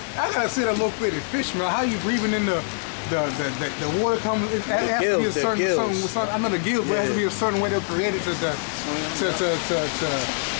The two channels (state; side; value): silent; right; 57 dB below the other